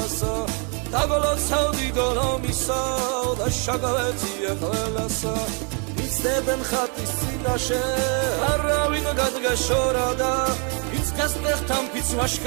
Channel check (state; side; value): quieter; left; 37.6 dB